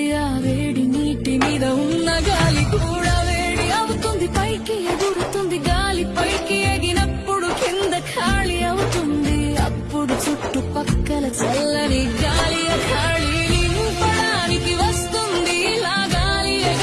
ఆ వేడి నీటి మీద ఉన్న గాలి కూడా వేడి అవుతుంది, పైకి ఎగురుతుంది. గాలి పైకి ఎగినప్పుడు కింద ఖాళీ అవుతుంది. అప్పుడు చుట్టుపక్కల చల్లని గాలి ఖాళీ నింపడానికి వస్తుంది. ఇలా గాలి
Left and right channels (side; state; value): both; identical; correlation 1.00